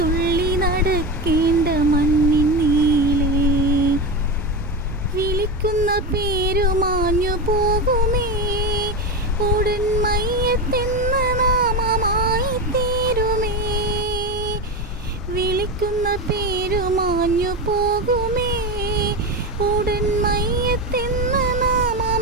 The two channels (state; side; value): normal; both; correlation 0.18